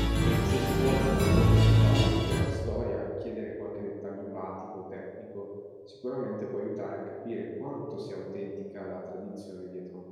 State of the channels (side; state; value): both; identical; correlation 1.00